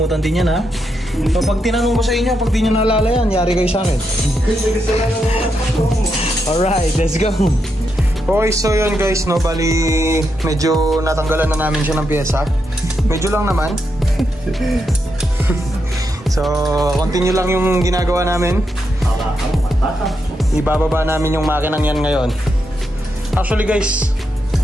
din yan ha. So pag tinanong ko sa inyo, pag di nyo naalala yan, yari kayo sa akin. Alright, let's go. Okay, so yun guys, no, bali medyo natanggalan na namin siya ng pyesa. Medyo lang naman. So, continue lang yung ginagawa namin. Ibababa namin yung makinang yan ngayon. Actually guys,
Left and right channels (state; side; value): normal; both; correlation 0.83